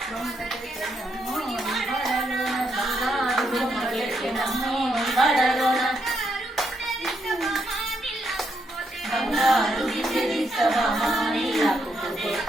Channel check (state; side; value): normal; both; correlation 0.78